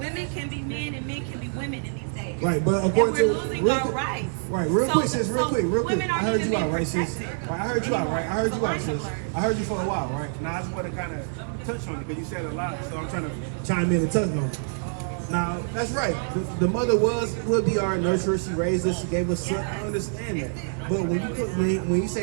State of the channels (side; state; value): left; silent; 61 dB below the other